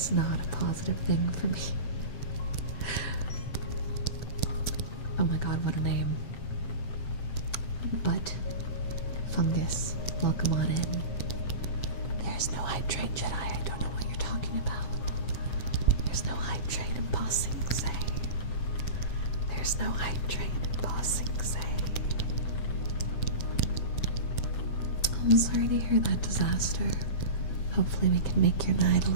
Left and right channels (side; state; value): right; late; 7.8 ms